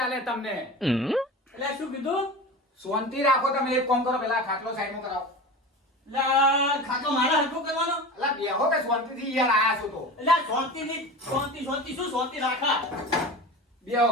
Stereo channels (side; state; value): both; normal; correlation 0.31